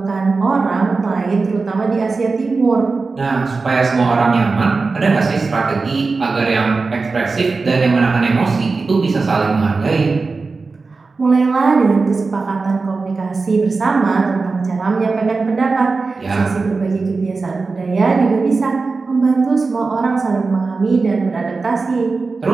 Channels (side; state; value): left; quieter; 4.1 dB